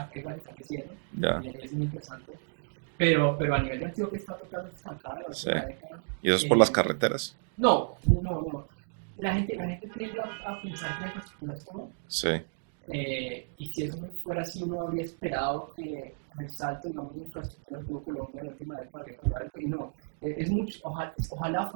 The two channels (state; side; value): silent; left; digital silence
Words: creciendo, Ya. es muy interesante. Pero a nivel de Antioquia está totalmente estancada. Sí. Y eso es por las carreteras. No. La gente tiende a pensar que la infraestructura es todo. Sí. Y si eso no fuera así, uno habría esperado que el salto, digamos, de infraestructura que tuvo Colombia en la última década habría cambiado. Y no, es mucho, ojalá